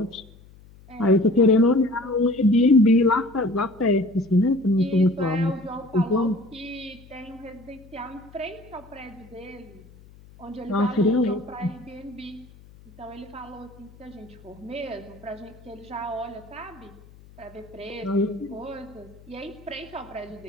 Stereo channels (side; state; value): left; noise; hum, 23 dB below the sound